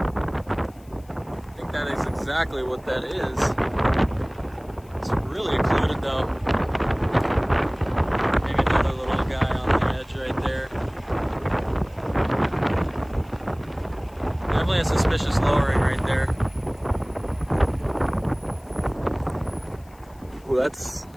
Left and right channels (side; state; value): left; noise; hiss, 29 dB below the sound